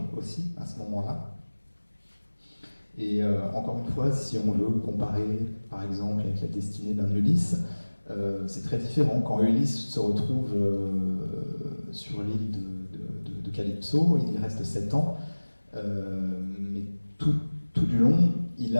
aussi à ce moment-là. Et encore une fois, si on veut comparer, par exemple, avec la destinée d'un Ulysse, c'est très différent. Quand Ulysse se retrouve sur l'île de Calypso, il y reste 7 ans, mais tout du long, il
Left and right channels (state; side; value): inverted; both; correlation -1.00